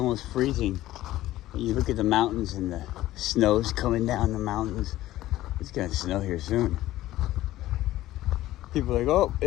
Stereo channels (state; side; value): quieter; right; 15.3 dB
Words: freezing. When you look at the mountains and the snow's coming down the mountains. It's gonna snow here soon. People are like, oh,